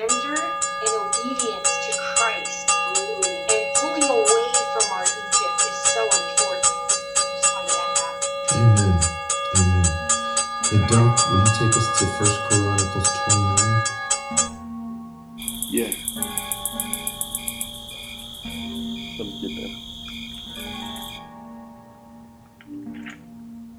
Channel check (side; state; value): both; identical; correlation 1.00